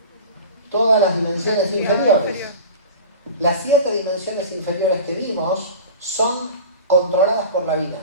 Todas las dimensiones inferiores. Las 7 dimensiones inferiores que vimos son controladas por la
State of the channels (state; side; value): inverted; both; correlation -0.35